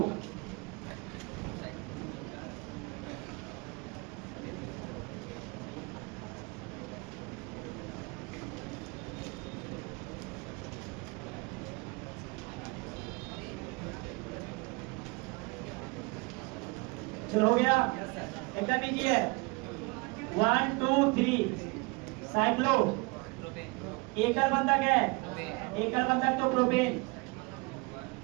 चलो हो गया। एकदम नीचे है 1 2 3 साइक्लो। एकल बंधक है, एकल बंधक तो प्रोपेन।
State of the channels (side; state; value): left; quieter; 28.1 dB